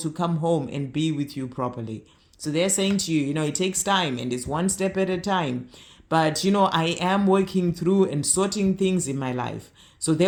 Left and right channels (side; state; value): both; identical; correlation 1.00